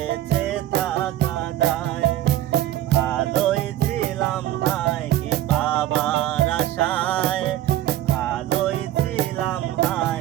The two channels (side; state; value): left; quieter; 13.5 dB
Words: থাকা দায়। ভালোই ছিলাম হায় কি পাবার আশায়, ভালোই ছিলাম